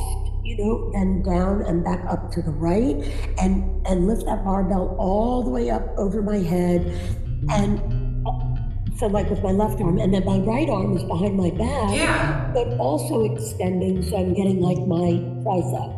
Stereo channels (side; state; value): both; identical; correlation 1.00